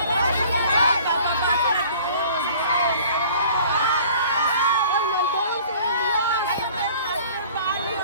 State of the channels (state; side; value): inverted; both; correlation -0.49